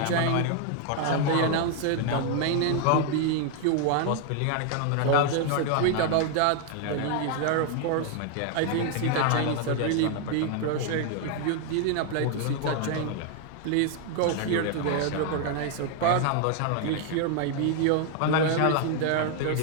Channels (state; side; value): different; both; correlation 0.00